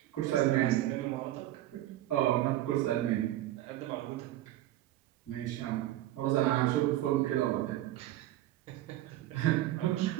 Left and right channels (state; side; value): quieter; left; 14.5 dB